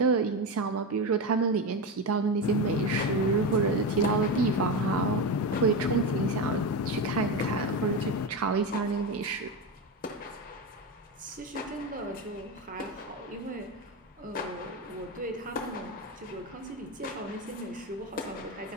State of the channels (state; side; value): normal; both; correlation 0.17